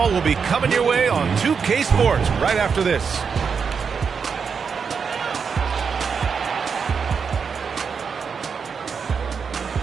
will be coming your way on 2K Sports right after this.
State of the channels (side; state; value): left; quieter; 6.0 dB